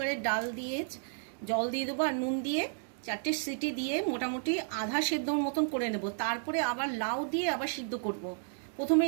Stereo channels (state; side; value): silent; left; digital silence